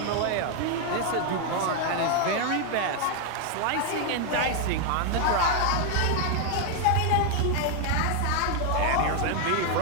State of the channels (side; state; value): both; different; correlation 0.01